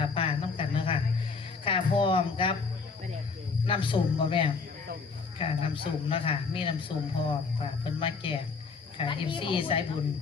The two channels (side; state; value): right; quieter; 4.7 dB